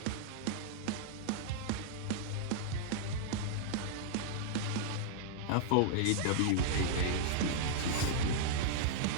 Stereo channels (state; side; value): different; both; correlation -0.01